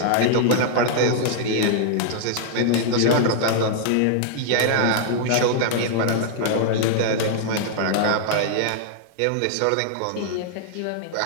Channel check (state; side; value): different; both; correlation -0.01